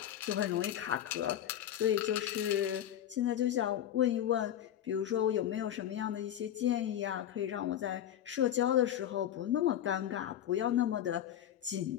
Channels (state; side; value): quieter; right; 11.0 dB